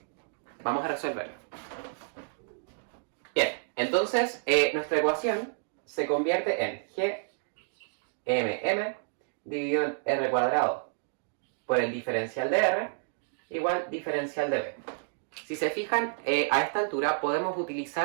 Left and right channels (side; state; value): left; silent; digital silence